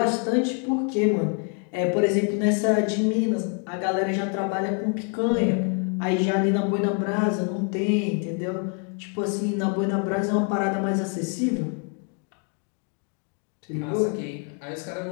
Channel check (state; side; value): quieter; right; 37.9 dB